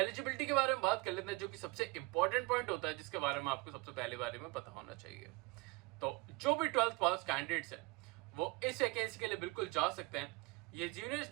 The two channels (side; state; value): left; quieter; 25.3 dB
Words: के बारे में बात कर लेते हैं, जो कि सबसे इंपॉर्टेंट पॉइंट होता है जिसके बारे में आपको सबसे पहले बारे में पता होना चाहिए। तो जो भी 12th पास कैंडिडेट्स हैं वो इस वैकेंसी के लिए बिल्कुल जा सकते हैं। ये